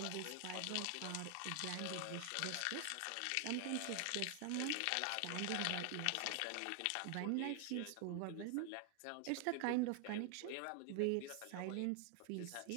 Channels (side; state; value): both; different; correlation 0.00